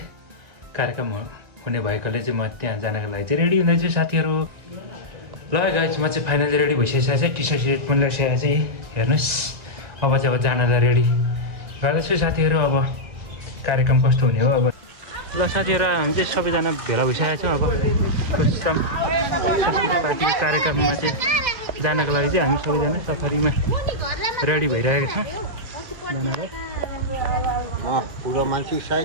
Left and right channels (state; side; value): late; left; 1.9 ms